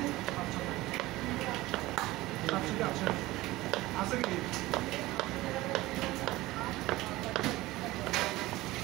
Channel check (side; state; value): left; quieter; 18.5 dB